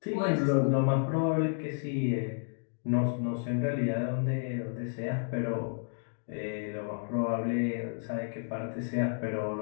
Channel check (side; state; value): right; silent; digital silence